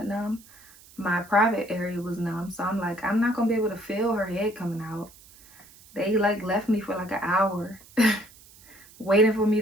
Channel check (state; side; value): noise; right; hiss, 24 dB below the sound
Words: numb, my private area was numb. So I'm like, I'm not gonna be able to feel her head coming out. They like left me for like an hour waiting for me